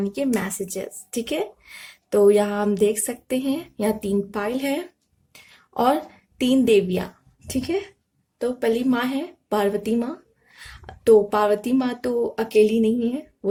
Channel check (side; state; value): both; identical; correlation 1.00